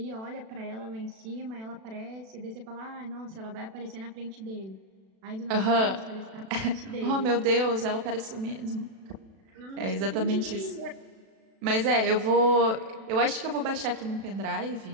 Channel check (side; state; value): left; late; 36 ms